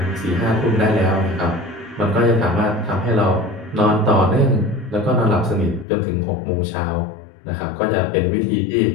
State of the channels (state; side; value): drops out; right; at 5.9 s